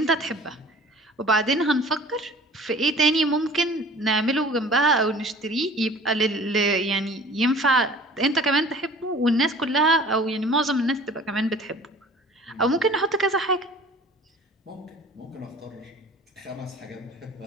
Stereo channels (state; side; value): normal; both; correlation 0.47